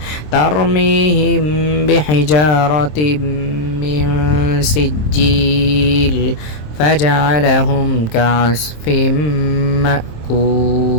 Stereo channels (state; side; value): late; right; 27 ms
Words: ترميهم بحجارة من سجيل فجعلهم كعصف